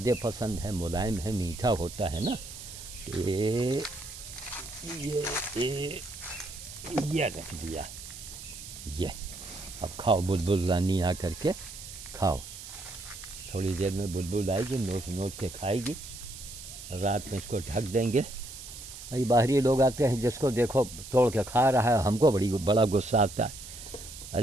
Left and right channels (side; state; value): right; noise; hiss, 13 dB below the sound